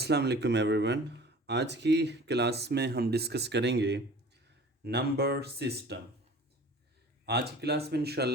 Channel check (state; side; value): normal; both; correlation 0.44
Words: वालेकुम एवरीवन। आज की क्लास में हम डिस्कस करेंगे नंबर सिस्टम। आज की क्लास में